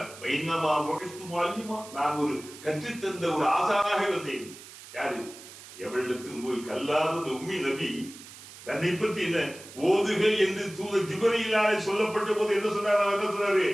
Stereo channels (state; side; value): noise; right; hiss, 17 dB below the sound